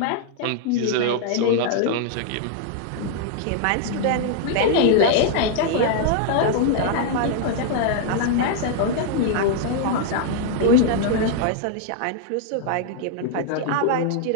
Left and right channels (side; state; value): both; different; correlation -0.01